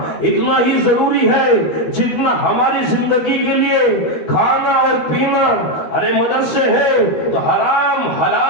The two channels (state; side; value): late; right; 13 ms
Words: اتنا ہی ضروری ہے جتنا ہماری زندگی کے لیے کھانا اور پینا۔ ارے مدرسے ہیں تو حرام